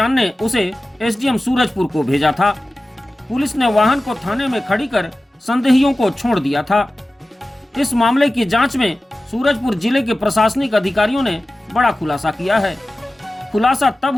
उसे एसडीएम सूरजपुर को भेजा था। पुलिस ने वाहन को थाने में खड़ी कर संदेहियों को छोड़ दिया था। इस मामले की जांच में सूरजपुर जिले के प्रशासनिक अधिकारियों ने बड़ा खुलासा किया है। खुलासा तब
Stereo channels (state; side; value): normal; both; correlation 0.95